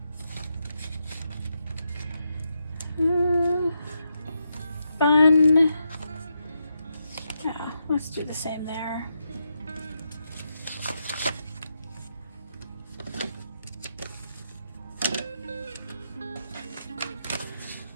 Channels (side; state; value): both; inverted; correlation -0.83